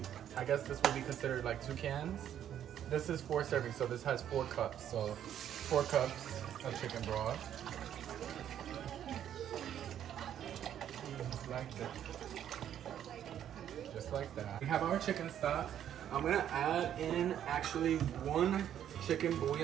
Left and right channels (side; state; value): left; quieter; 10.2 dB